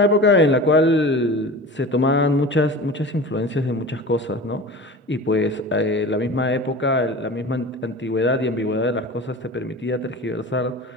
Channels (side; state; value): both; normal; correlation 0.35